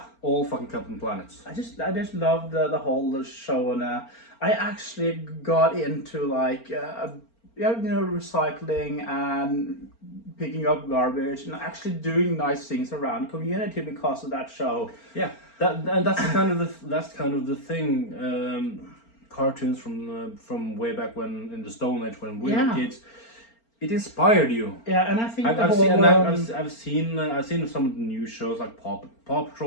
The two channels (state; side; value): late; right; 4.4 ms